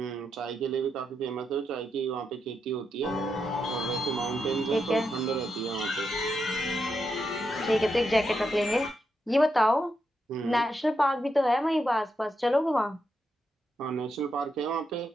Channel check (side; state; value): both; normal; correlation 0.84